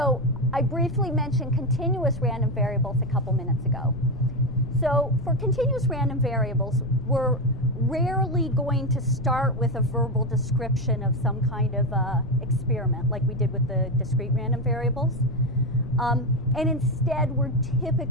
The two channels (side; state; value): left; noise; rumble, 11 dB below the sound